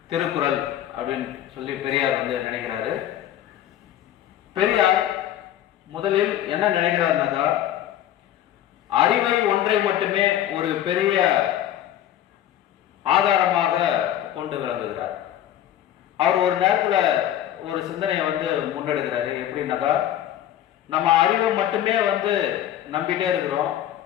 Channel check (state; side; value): quieter; right; 11.7 dB